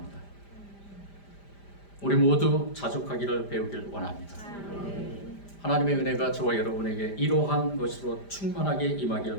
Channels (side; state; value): right; late; 5.0 ms